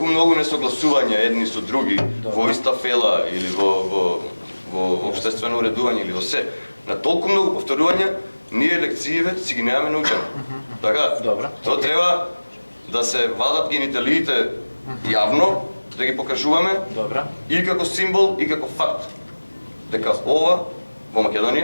многу несогласувања едни со други во иста фела или во општествено уредување или во се, на толку многу повторувања, ние лекциите си ги немаме научени. Така, тоа треба да се вадат гениталиите јавно, да ги покажуваме и како символ и како факт. Дека ова во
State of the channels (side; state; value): both; inverted; correlation -1.00